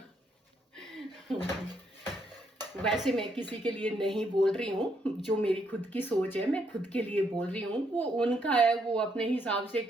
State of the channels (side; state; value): both; normal; correlation 0.75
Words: वैसे मैं किसी के लिए नहीं बोल रही हूँ, जो मेरी खुद की सोच है मैं खुद के लिए बोल रही हूँ, वो उनका है, वो अपने हिसाब से